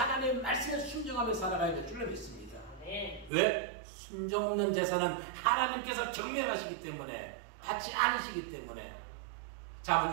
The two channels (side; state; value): left; drops out; at 3.3 s